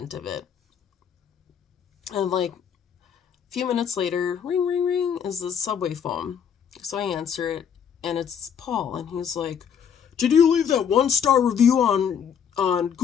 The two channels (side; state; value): right; quieter; 7.8 dB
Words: of it. And like a few minutes later, ring, ring, ring, is the subway phone. So I answer it, and it's Paul, and he's like, "Did you leave that 1-star review on